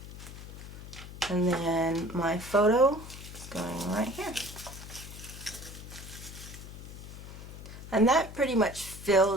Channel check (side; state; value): left; noise; hum, 13 dB below the sound